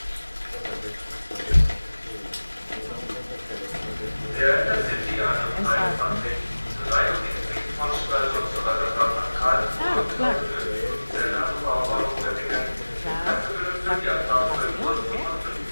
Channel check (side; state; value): both; inverted; correlation -1.00